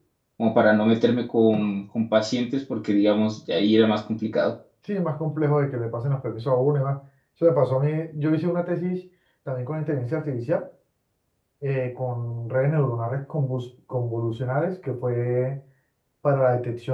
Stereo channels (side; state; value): both; identical; correlation 1.00